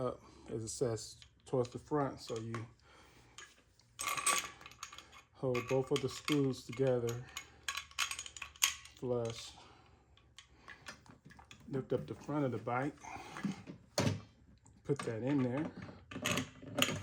as it says, towards the front. So you hold both of the screws together, flush. Lift up the front of the bike, put that in there,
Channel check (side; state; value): both; identical; correlation 1.00